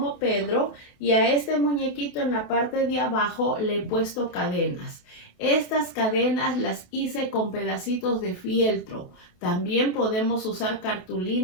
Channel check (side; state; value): right; late; 28 ms